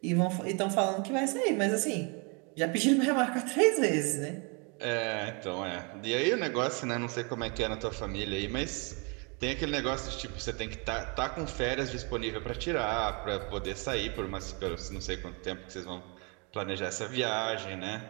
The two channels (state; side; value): quieter; left; 32.8 dB